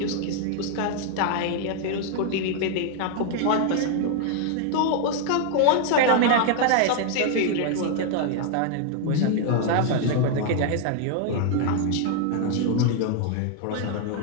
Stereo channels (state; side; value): different; both; correlation 0.00